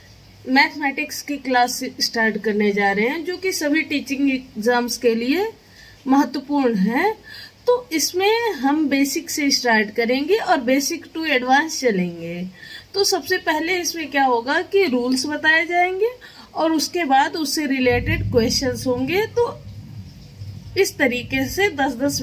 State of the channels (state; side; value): identical; both; correlation 1.00